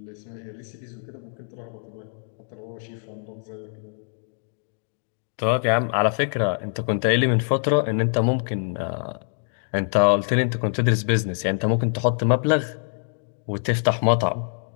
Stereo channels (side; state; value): right; silent; digital silence